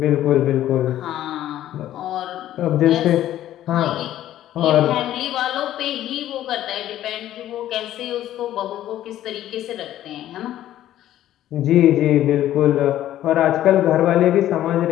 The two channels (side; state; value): right; quieter; 12.8 dB